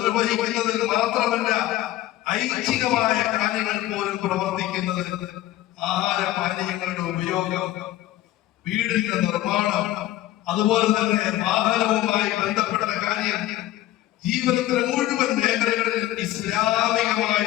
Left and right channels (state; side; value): quieter; right; 14.7 dB